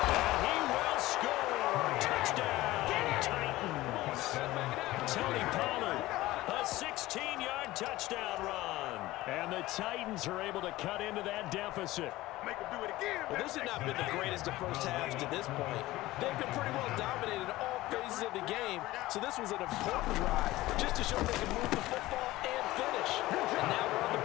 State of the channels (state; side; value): quieter; right; 17.6 dB